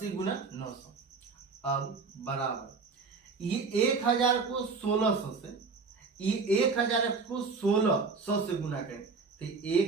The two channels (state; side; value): quieter; left; 4.6 dB